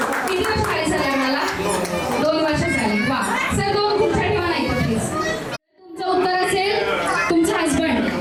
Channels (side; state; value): both; identical; correlation 1.00